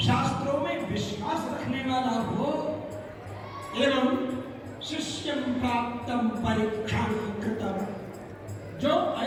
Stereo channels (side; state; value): both; identical; correlation 1.00